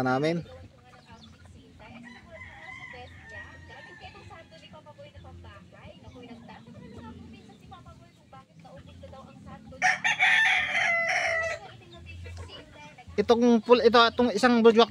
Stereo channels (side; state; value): both; identical; correlation 1.00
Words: namin. Itong isang budwak